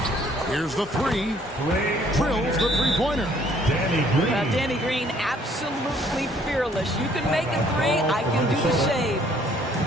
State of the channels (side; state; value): both; normal; correlation 0.61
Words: Here's the 3. Drills the three-pointer. Danny Green, absolutely fearless. You can make a 3. I can do the same.